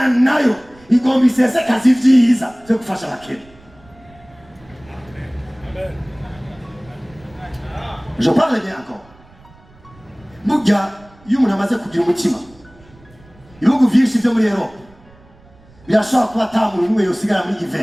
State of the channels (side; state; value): right; noise; rumble, 26 dB below the sound